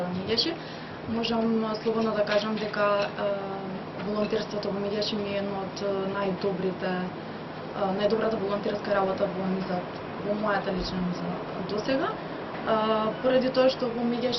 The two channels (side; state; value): both; identical; correlation 1.00